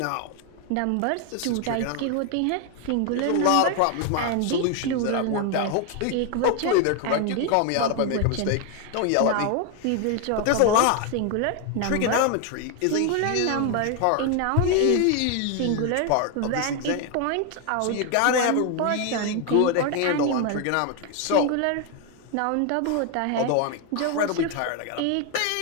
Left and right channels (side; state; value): both; different; correlation 0.01